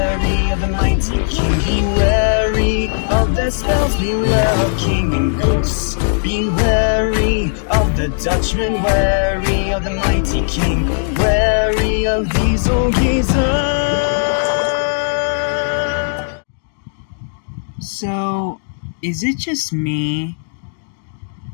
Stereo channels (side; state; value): right; silent; digital silence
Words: of the mighty king. Be wary of their spells, beware of king and ghosts. Be wary of the Dutchman, wary of the mighty king, wary of these old geezers. So, is it just me,